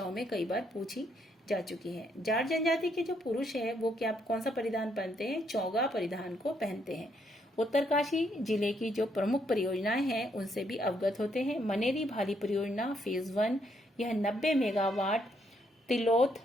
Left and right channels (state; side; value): normal; both; correlation 0.73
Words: में कई बार पूछी जा चुकी है। जाट जनजाति के जो पुरुष है वो कौन सा परिधान पहनते हैं? चौगा परिधान को पहनते हैं। उत्तरकाशी जिले की जो प्रमुख परियोजनाएं हैं उनसे भी अवगत होते हैं। मनेरी भाली परियोजना फेज 1, यह 90 मेगावाट तिलोथ